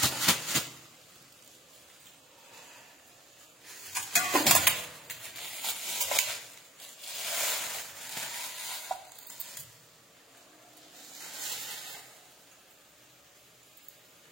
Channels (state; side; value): normal; both; correlation 0.57